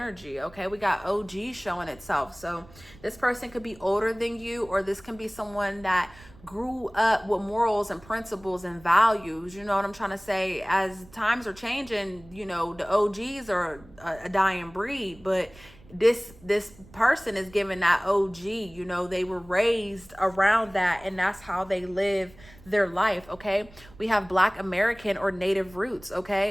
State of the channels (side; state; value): right; noise; rumble, 23 dB below the sound